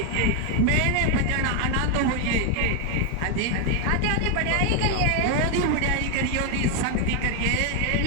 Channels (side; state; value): both; different; correlation 0.01